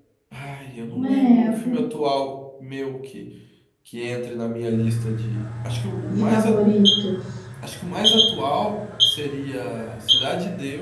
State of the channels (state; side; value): identical; both; correlation 1.00